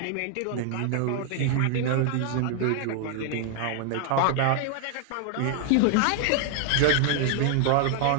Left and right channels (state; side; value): different; both; correlation 0.00